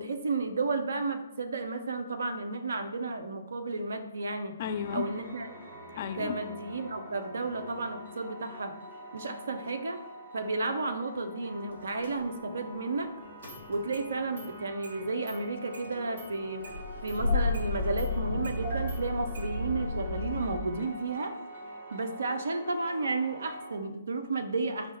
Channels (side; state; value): both; inverted; correlation -0.72